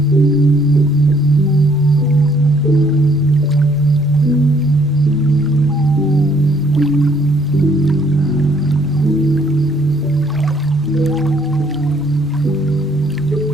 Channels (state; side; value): normal; both; correlation 0.64